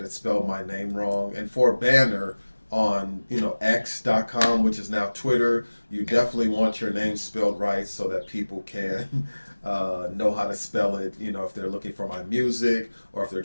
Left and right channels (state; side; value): inverted; both; correlation -1.00